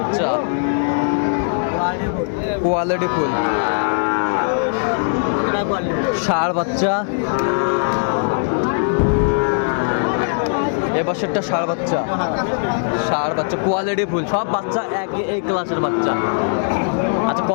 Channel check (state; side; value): silent; right; digital silence